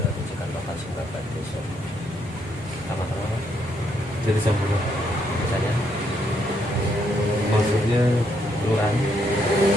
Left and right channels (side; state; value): both; normal; correlation 0.75